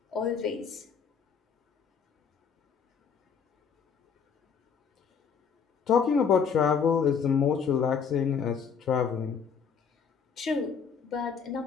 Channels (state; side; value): quieter; right; 6.5 dB